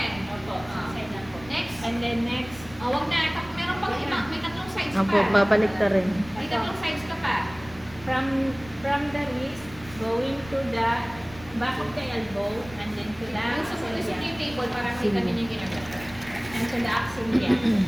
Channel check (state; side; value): noise; right; rumble, 19 dB below the sound